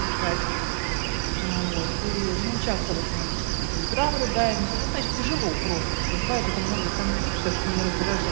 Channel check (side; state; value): left; silent; 61 dB below the other